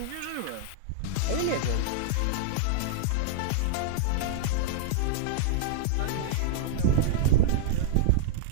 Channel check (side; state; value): both; different; correlation -0.01